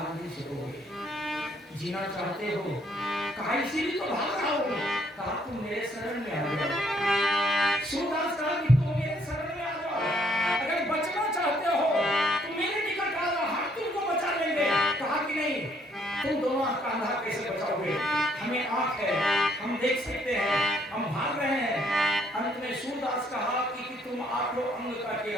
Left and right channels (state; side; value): normal; both; correlation 0.67